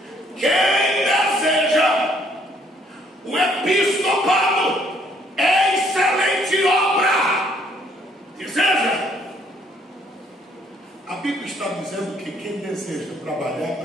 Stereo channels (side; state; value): both; normal; correlation 0.66